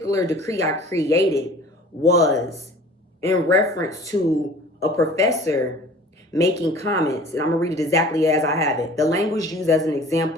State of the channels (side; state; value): both; normal; correlation 0.46